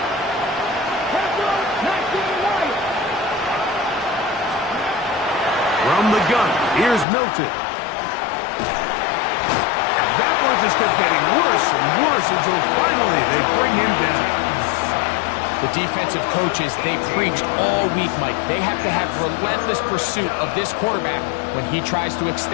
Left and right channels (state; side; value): drops out; right; at 7.1 s